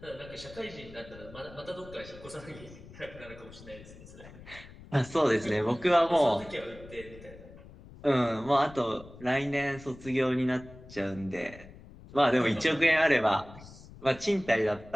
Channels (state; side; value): noise; left; rumble, 18 dB below the sound